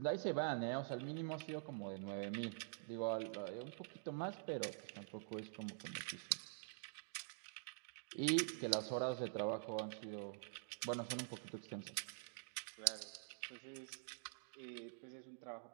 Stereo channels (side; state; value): left; silent; digital silence